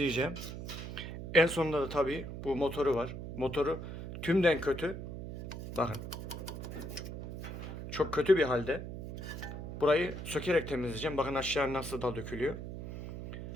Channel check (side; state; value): right; noise; hum, 8 dB below the sound